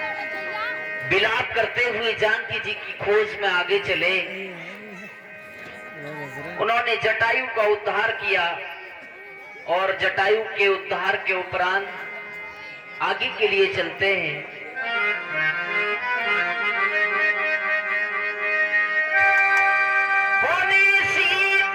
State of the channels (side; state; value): both; identical; correlation 1.00